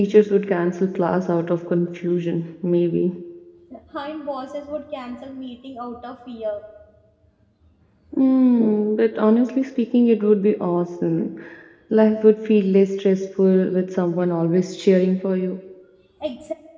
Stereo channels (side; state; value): both; identical; correlation 1.00